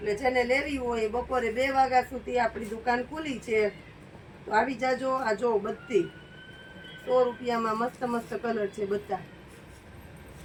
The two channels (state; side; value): identical; both; correlation 1.00